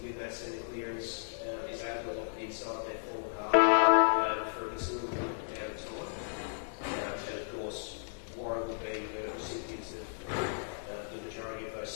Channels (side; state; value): right; silent; digital silence